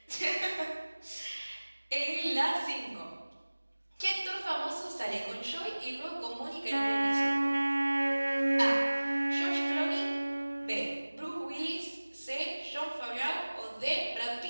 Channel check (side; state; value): both; inverted; correlation -1.00